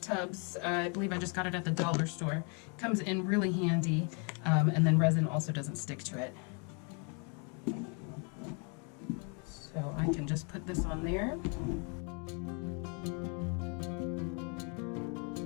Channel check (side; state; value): right; quieter; 36.8 dB